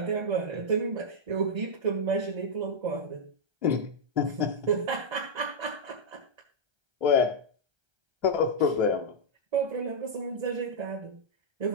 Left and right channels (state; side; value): late; left; 1.3 ms